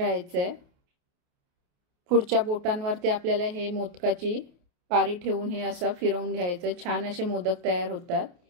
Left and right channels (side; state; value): left; late; 28 ms